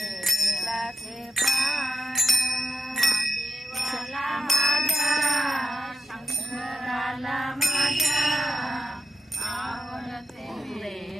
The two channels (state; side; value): normal; both; correlation 0.87